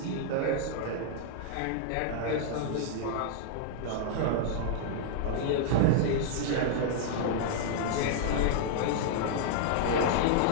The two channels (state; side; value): different; both; correlation -0.01